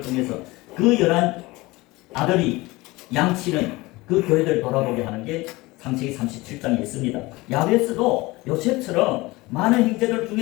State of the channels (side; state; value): right; quieter; 21.4 dB